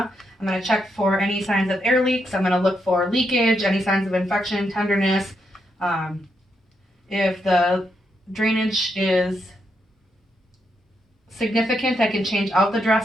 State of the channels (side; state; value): both; normal; correlation 0.80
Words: I'm going to check for any signs of air leaks. I'm going to look for leakage, any signs of infection, tenderness. If the drainage is significant, I can change out the